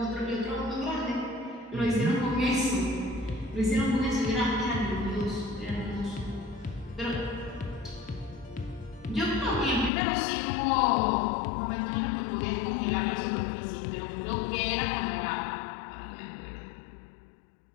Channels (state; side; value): drops out; right; at 9.9 s